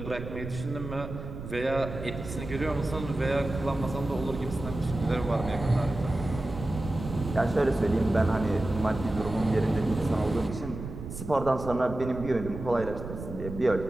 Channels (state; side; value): noise; right; rumble, 9 dB below the sound